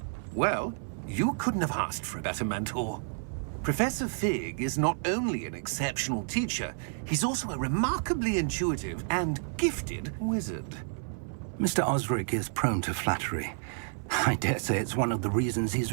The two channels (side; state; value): left; silent; 58 dB below the other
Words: Well, you couldn't have asked for a better mentor. Professor Fig is not only an exceptional teacher, he's also a remarkably intuitive and gifted wizard. Mr. Osric is prone to flattery. I dare say it's one of the reasons he's